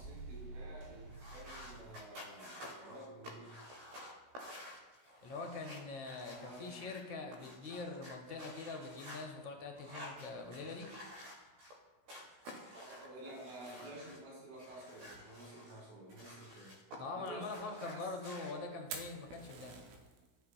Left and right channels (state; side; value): late; left; 16 ms